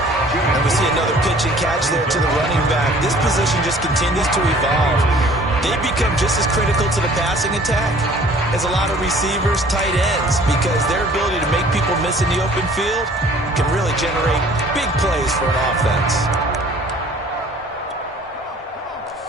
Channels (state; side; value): normal; both; correlation 0.52